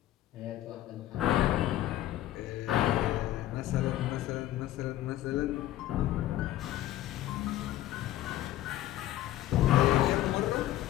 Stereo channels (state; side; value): quieter; right; 14.0 dB